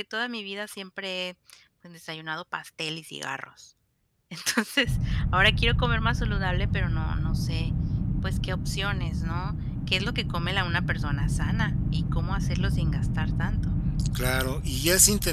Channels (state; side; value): identical; both; correlation 1.00